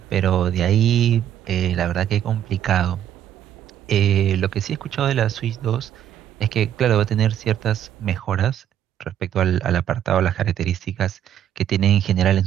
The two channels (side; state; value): left; quieter; 10.4 dB